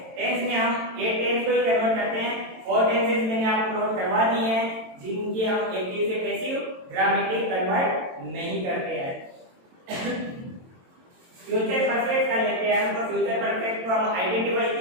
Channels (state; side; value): late; left; 22 ms